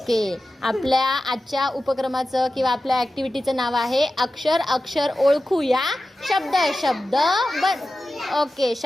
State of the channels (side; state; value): both; normal; correlation 0.94